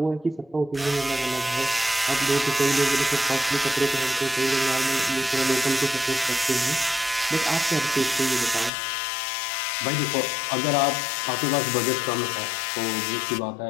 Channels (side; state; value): right; drops out; at 8.7 s